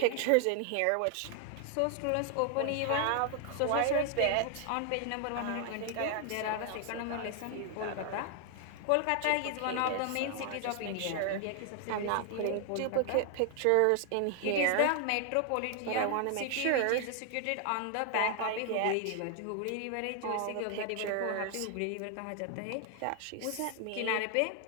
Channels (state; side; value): different; both; correlation 0.00